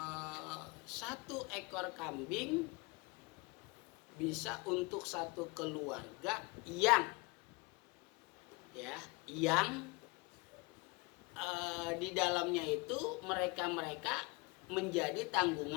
1 ekor kambing bisa untuk satu keluarga yang di dalamnya itu mereka menjadi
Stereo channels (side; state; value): right; quieter; 27.0 dB